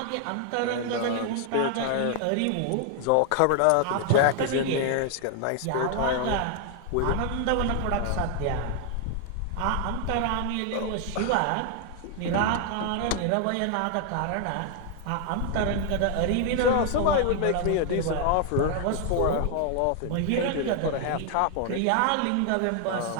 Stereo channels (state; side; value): different; both; correlation 0.00